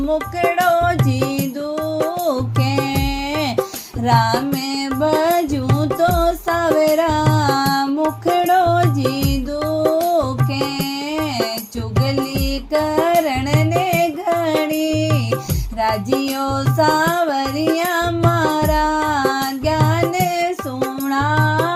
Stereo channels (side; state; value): both; identical; correlation 1.00